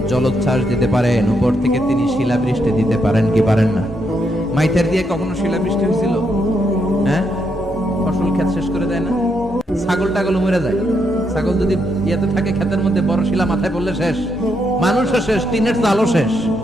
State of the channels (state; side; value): normal; both; correlation 0.78